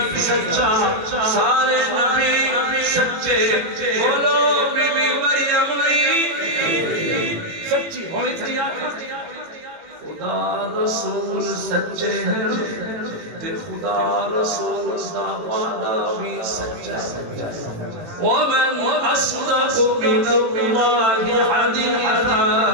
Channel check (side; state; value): left; late; 18 ms